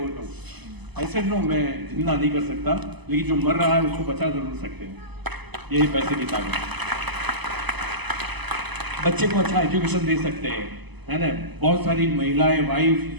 तो? ऐसे नो, मैं जिंदा नहीं कर सकता, लेकिन जो मर रहा है उसको बचा जरूर सकते हैं। यही पैसे की ताकत है। बच्चे को अच्छा एजुकेशन दे सकते हैं, है ना। बहुत सारी महिलाएं, वाइफ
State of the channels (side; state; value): left; late; 0.99 ms